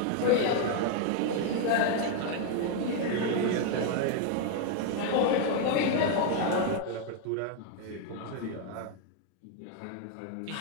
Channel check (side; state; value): both; different; correlation 0.00